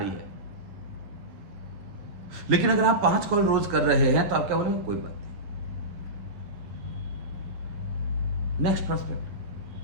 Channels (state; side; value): late; left; 10 ms